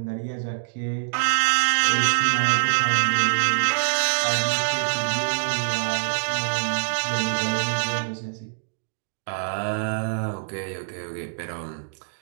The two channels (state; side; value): silent; left; digital silence